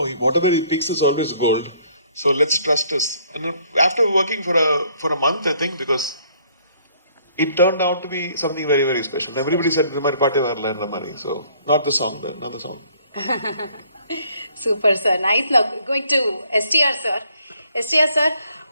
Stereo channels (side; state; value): both; inverted; correlation -0.62